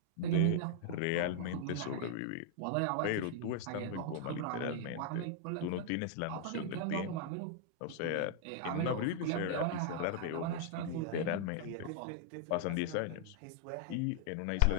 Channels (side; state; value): both; different; correlation -0.01